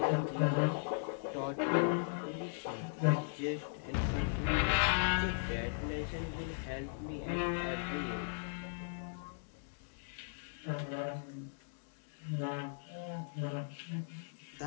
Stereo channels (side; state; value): right; silent; digital silence